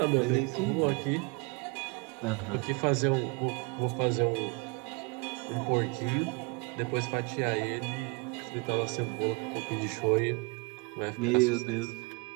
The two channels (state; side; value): quieter; left; 30.1 dB